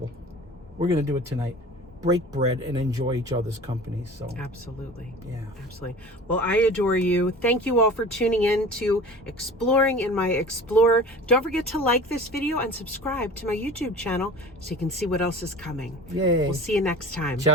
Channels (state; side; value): normal; both; correlation 0.40